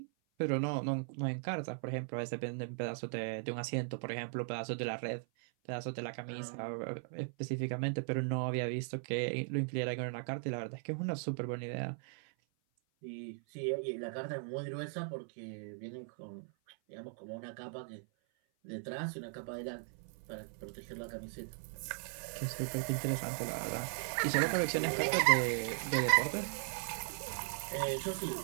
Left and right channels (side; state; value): left; silent; 52 dB below the other